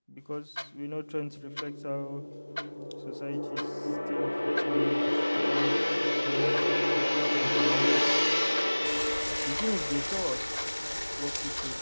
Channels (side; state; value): both; inverted; correlation -1.00